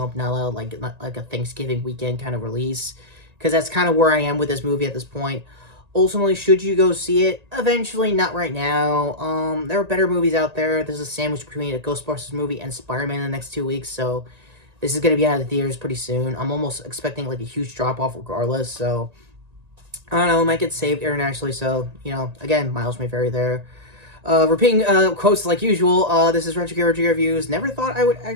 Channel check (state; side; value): late; left; 1.8 ms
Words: not like a Thanksgiving weekend kind of release, because that's kind of where I am with this movie at this point. Ultimately, should you go see it? Eventually, not right now. There are better movies out there. There's a sandwich between a Ghostbusters movie and Spider-Man in the next 2 weeks, so this is going to be out of the theaters pretty soon. I'm almost expecting, like, a huge drop-off regardless, so I don't know, it might get saved internationally, so, you know, again, miles may vary there. Repeating quotes like usual, this is Retrokid Reviews. Never thought I would